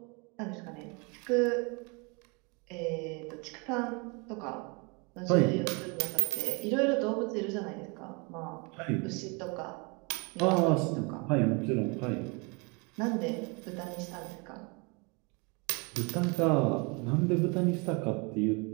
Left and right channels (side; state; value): left; quieter; 30.6 dB